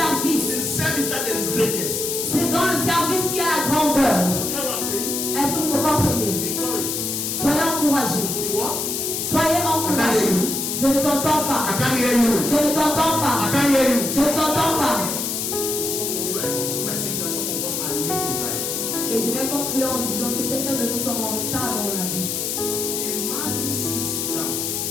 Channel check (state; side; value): noise; left; hiss, 2 dB below the sound